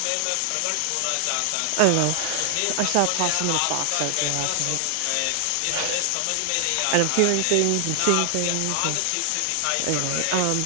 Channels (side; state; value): both; different; correlation 0.00